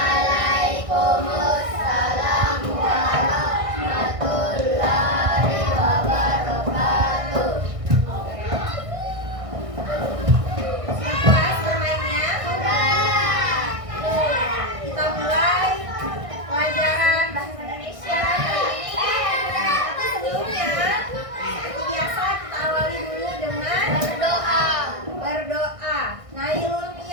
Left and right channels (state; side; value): late; left; 1.6 ms